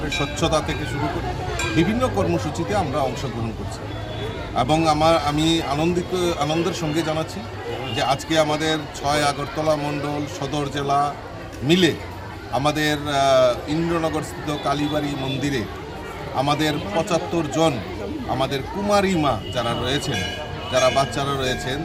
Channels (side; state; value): both; identical; correlation 1.00